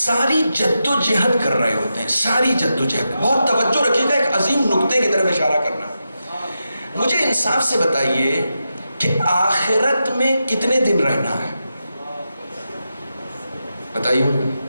جد و جہد کر رہے ہوتے ہیں. ساری جد و جہد, بہت توجہ رکھیے گا, ایک عظیم نقطے کی طرف اشارہ کرنا. مجھے انصاف سے بتائیے کہ آخرت میں کتنے دن رہنا ہے؟ بتائیے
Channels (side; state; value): both; inverted; correlation -0.88